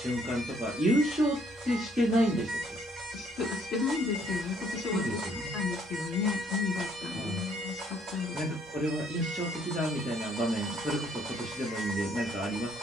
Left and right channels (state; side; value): normal; both; correlation 0.65